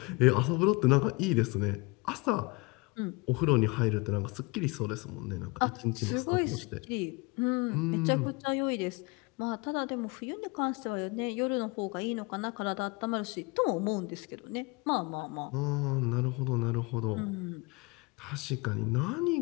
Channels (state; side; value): quieter; right; 26.5 dB